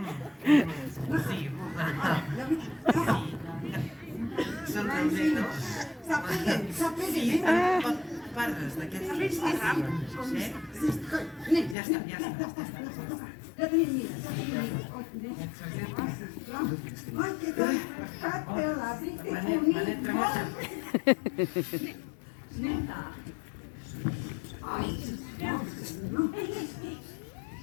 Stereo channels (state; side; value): drops out; right; at 11.8 s